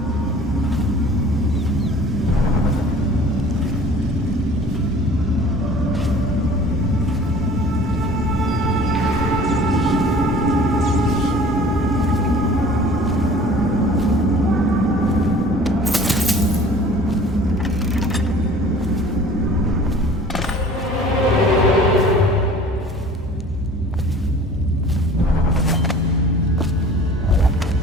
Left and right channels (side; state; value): both; normal; correlation 0.47